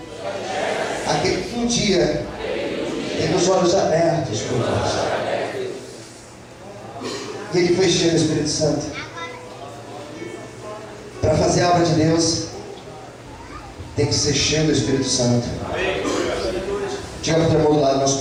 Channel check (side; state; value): both; identical; correlation 1.00